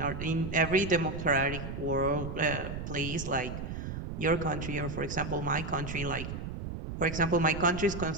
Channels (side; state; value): right; noise; rumble, 6 dB below the sound